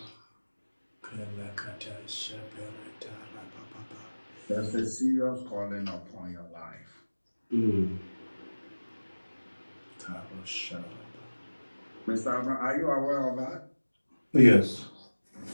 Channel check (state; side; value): inverted; both; correlation -1.00